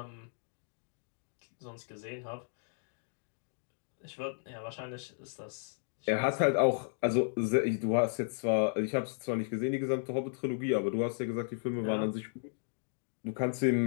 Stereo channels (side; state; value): right; silent; digital silence